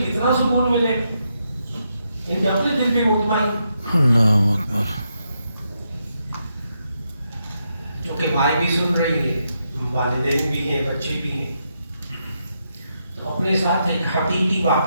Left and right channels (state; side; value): inverted; both; correlation -0.81